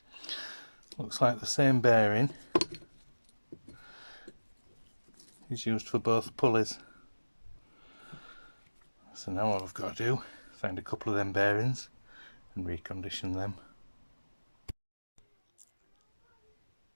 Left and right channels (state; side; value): inverted; both; correlation -1.00